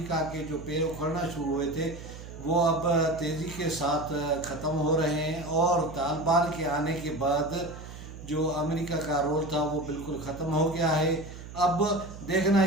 के जो पैर उखड़ना शुरू हुए थे वो अब तेज़ी के साथ ख़त्म हो रहे हैं और तालिबान के आने के बाद जो अमेरिका का रोल था वो बिल्कुल ख़त्म हो गया है। अब देखना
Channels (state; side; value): noise; right; hum, 13 dB below the sound